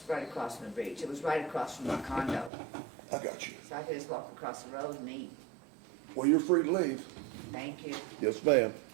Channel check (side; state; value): left; drops out; at 2.5 s